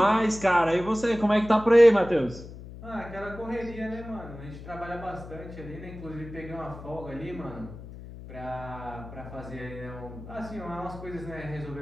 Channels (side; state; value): left; noise; hum, 14 dB below the sound